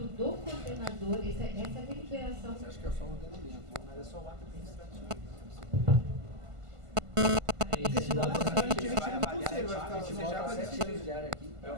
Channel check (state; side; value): late; left; 1.5 ms